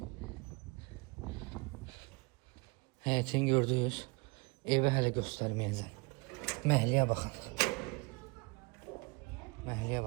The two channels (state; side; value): quieter; left; 28.0 dB